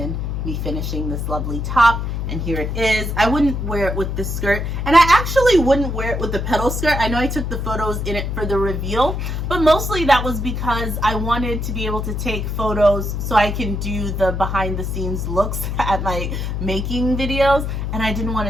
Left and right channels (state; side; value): noise; left; hum, 2 dB below the sound